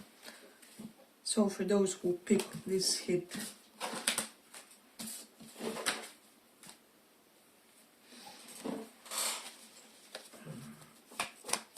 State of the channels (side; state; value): both; identical; correlation 1.00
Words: So for those who picked this hit,